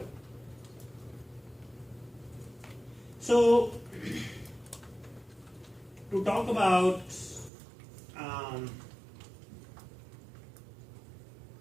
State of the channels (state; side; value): drops out; left; at 7.5 s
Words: So, to talk about